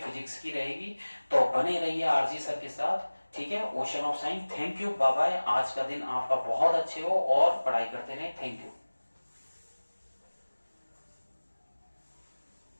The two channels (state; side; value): inverted; both; correlation -1.00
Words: की रहेगी, तो बने रहिए RG सर के साथ। ठीक है। Ocean of science. Thank you, bye bye. आज का दिन आपका बहुत अच्छे हो और पढ़ाई करते रहे। Thank you.